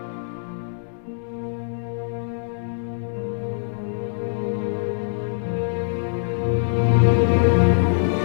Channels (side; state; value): right; silent; digital silence